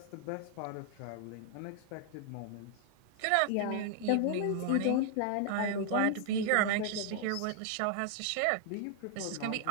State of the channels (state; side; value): different; both; correlation 0.00